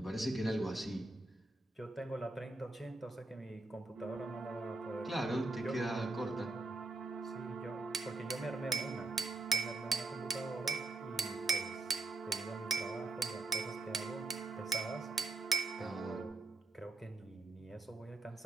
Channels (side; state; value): left; quieter; 3.3 dB